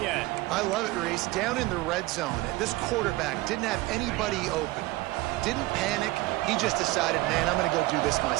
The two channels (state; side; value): quieter; left; 19.8 dB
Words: end. I love it, Reese. Down in the red zone, this quarterback didn't have anybody open. Didn't panic. He just decided, man, I'm going to go do this